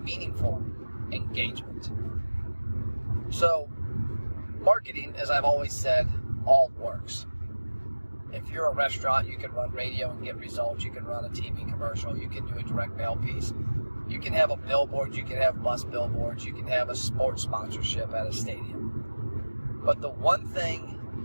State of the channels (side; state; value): both; inverted; correlation -1.00